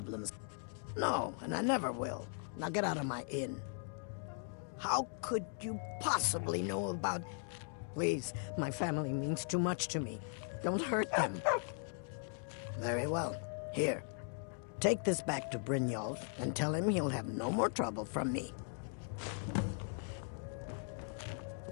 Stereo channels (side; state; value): right; silent; 52 dB below the other